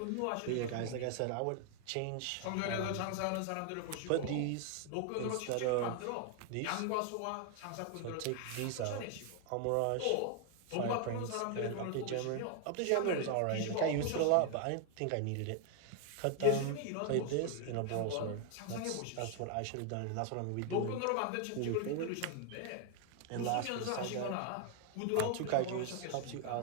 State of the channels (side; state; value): both; different; correlation 0.00